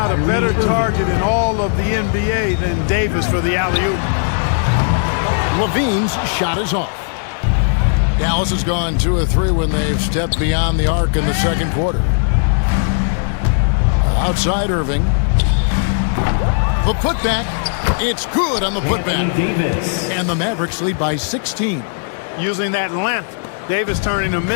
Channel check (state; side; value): silent; right; 68 dB below the other